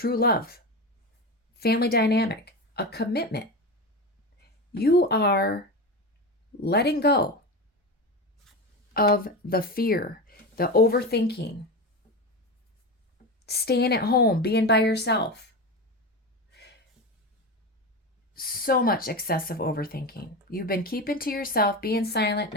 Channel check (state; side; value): normal; both; correlation 0.22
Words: love, family dynamic, a commitment. You are letting go of the fear, the overthinking, staying at home, being by yourself. So much excessive overthinking. You've been keeping to yourself, being silent,